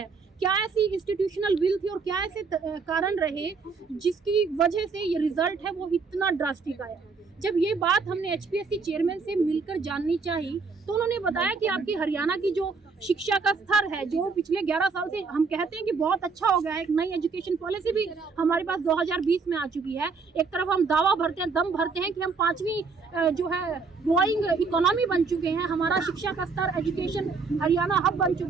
क्या ऐसी इंस्टीट्यूशनल विल थी और क्या ऐसे कारण रहे जिसकी वजह से ये रिजल्ट है वो इतना ड्रास्टिक आया। जब ये बात हमने एचपीएससी चेयरमैन से मिलकर जाननी चाहिए तो उन्होंने बताया कि आपकी हरियाणा की जो शिक्षा का स्तर है, जो पिछले 11 साल से हम कहते हैं कि बहुत अच्छा हो गया है, एक नई एजुकेशन पॉलिसी भी हमारे पास 2020 में आ चुकी है। एक तरफ हम दावा भरते हैं, दम भरते हैं कि हम 5वीं जो है ग्रोइंग इकोनॉमी बन चुके हैं, हमारा शिक्षा का स्तर एजुकेशन हरियाणा हब बन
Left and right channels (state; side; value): quieter; left; 4.8 dB